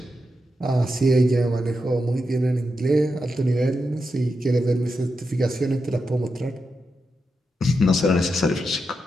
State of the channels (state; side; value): normal; both; correlation 0.87